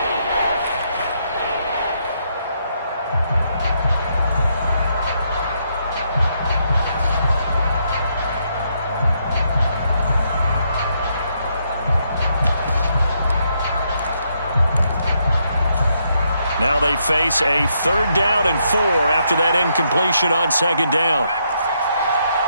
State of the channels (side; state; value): both; inverted; correlation -0.76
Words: Now they face a 3rd down and 4 after that incompletion on 2nd down.